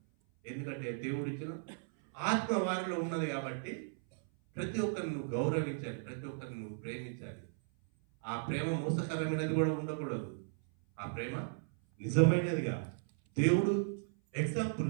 ఎందుకంటే దేవుడు ఇచ్చిన ఆత్మ వారిలో ఉన్నది కాబట్టి ప్రతి ఒక్కరిని నువ్వు గౌరవించాలి, ప్రతి ఒక్కరిని నువ్వు ప్రేమించాలి. ఆ ప్రేమ మోసకరమైనది కూడా ఉండకూడదు. ఆ ప్రేమ నిజమైనదిగా. దేవుడు ఎగ్జాంపుల్,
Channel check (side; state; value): left; silent; 54 dB below the other